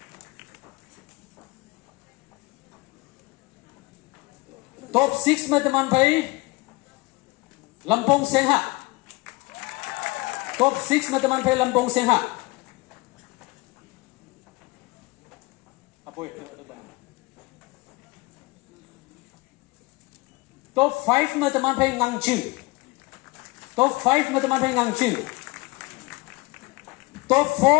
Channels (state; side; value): quieter; right; 23.6 dB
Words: Top 6 में teman भाई Lampung Sengha. Top 6 में teman भाई Lampung Sengha. Aboy. Top 5 में teman भाई Ngangching. Top 5 में teman भाई Ngangching. Top